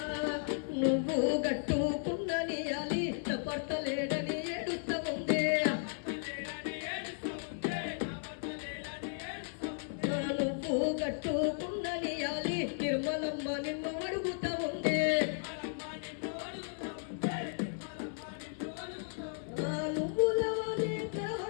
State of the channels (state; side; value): silent; right; 54 dB below the other